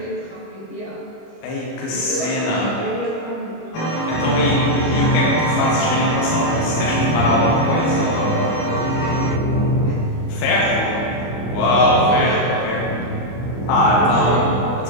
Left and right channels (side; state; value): right; late; 25 ms